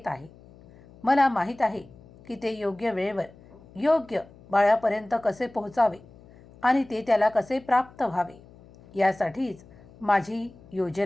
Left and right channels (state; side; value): noise; left; hum, 23 dB below the sound